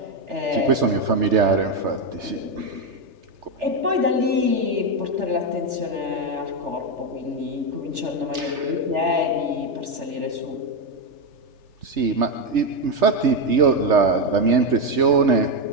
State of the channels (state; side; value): late; left; 3.3 ms